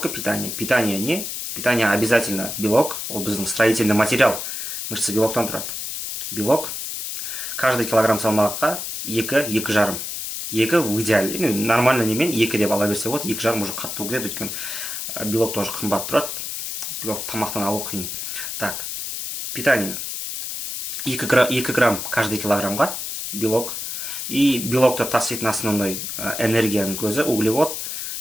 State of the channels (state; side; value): noise; left; hiss, 5 dB below the sound